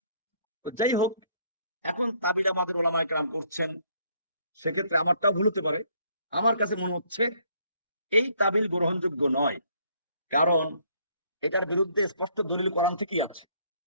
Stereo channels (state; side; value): inverted; both; correlation -0.65